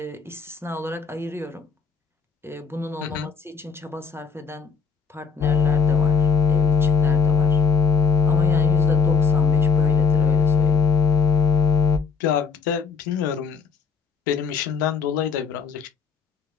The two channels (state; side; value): quieter; right; 5.5 dB